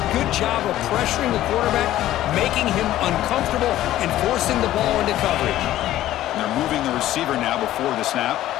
Good job of pressuring the quarterback, making him uncomfortable, and forcing the ball into coverage. And they're moving the receiver now before the snap.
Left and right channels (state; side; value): quieter; right; 13.9 dB